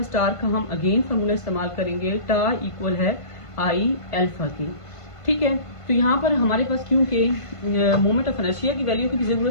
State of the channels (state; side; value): late; right; 1.5 ms